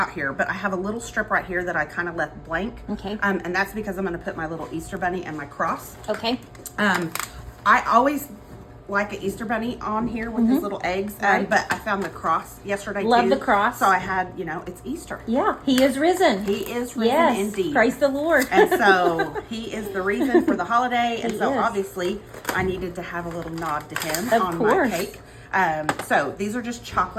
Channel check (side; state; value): both; identical; correlation 1.00